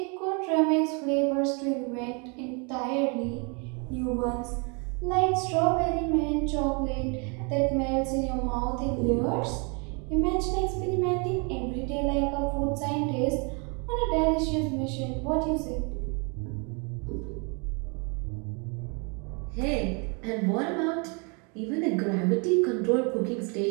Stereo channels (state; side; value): quieter; left; 34.1 dB